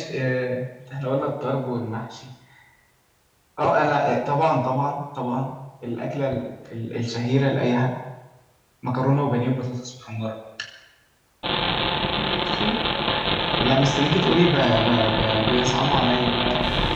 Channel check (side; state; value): both; identical; correlation 1.00